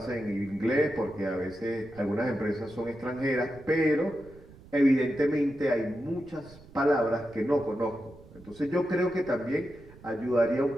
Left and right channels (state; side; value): noise; right; rumble, 21 dB below the sound